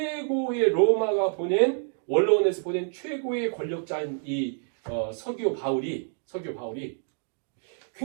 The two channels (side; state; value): left; silent; 60 dB below the other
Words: 로마가 보낸 원로원에서 보낸 최고의 권력자인 이 서기오 바울이